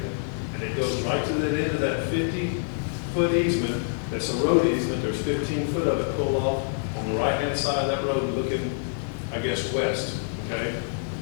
And it goes right to the end of that 50-foot easement. That's a road easement. There's 15 foot of it pulled off on the right-hand side of that road looking, I guess, west, okay?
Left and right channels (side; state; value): right; silent; digital silence